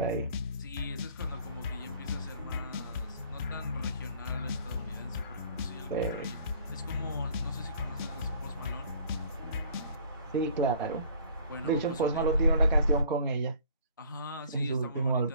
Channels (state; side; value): inverted; both; correlation -0.54